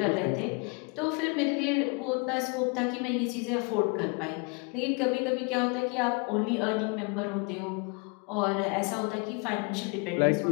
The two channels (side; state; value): right; quieter; 32.1 dB